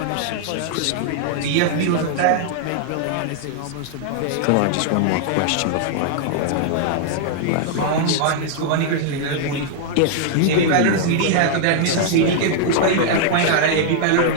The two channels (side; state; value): both; different; correlation -0.01